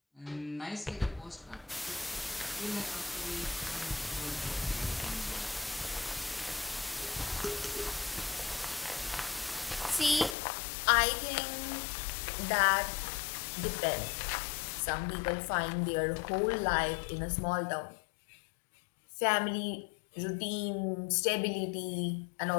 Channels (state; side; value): drops out; right; at 10.4 s